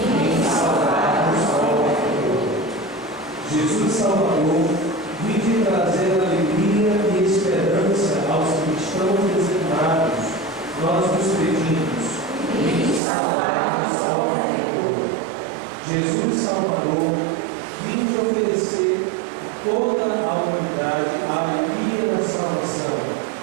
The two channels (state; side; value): drops out; left; at 13.0 s